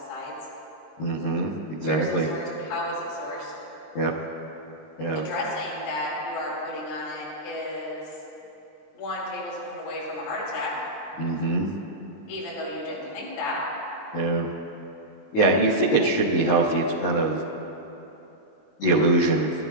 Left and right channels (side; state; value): right; late; 19 ms